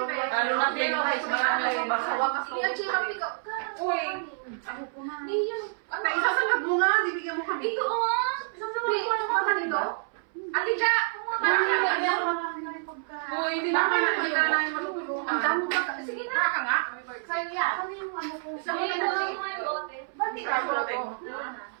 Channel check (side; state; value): left; silent; 59 dB below the other